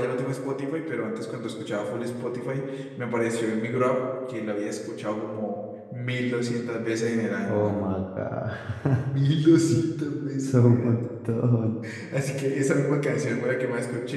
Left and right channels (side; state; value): both; identical; correlation 1.00